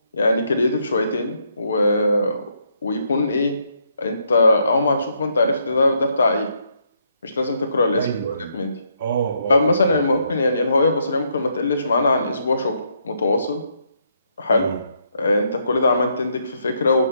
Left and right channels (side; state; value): both; inverted; correlation -0.75